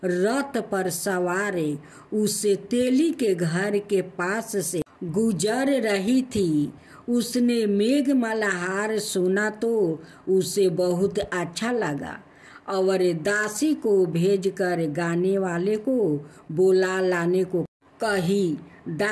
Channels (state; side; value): identical; both; correlation 1.00